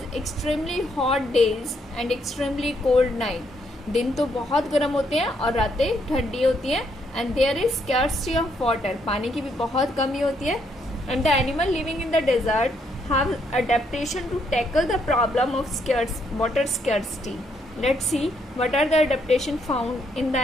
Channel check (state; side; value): normal; both; correlation 0.73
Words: extremely hot days and extremely cold night. दिन तो बहुत गर्म होते हैं और रातें ठंडी होती हैं, and there is scarcity of water. पानी की भी बहुत कमी होती है, and the animal living in the desert have adaptation to tackle the problem of water scarcity. Let's see what are the adaptation found in the